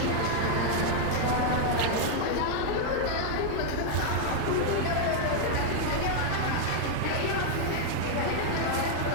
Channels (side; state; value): both; different; correlation 0.00